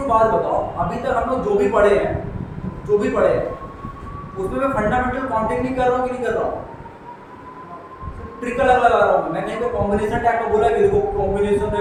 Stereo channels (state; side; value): identical; both; correlation 1.00